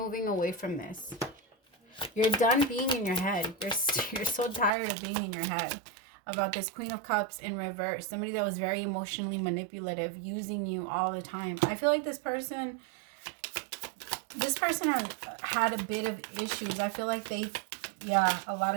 away from this. You're done being in your head. You're so tired of being in your head about this Queen of Cups in reverse. Somebody that was very emotionally manipulative, using you all the time. I feel like this person had a bit of issues. I feel like a lot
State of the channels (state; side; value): drops out; left; at 4.7 s